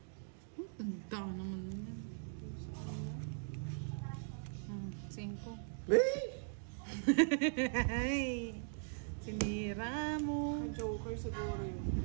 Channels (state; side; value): silent; left; digital silence